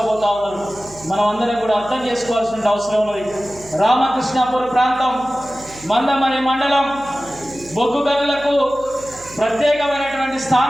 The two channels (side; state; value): right; noise; hum, 22 dB below the sound